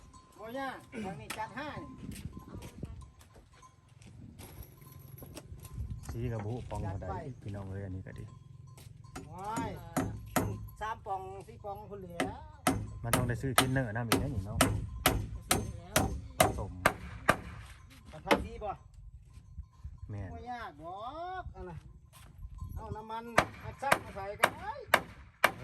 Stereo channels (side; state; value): both; identical; correlation 1.00